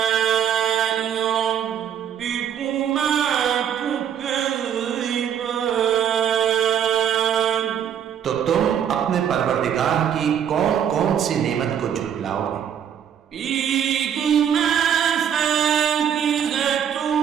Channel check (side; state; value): left; quieter; 8.9 dB